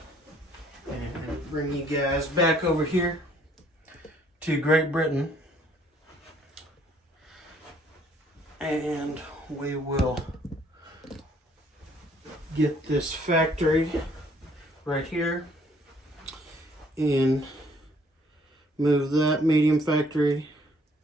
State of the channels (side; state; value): both; normal; correlation 0.63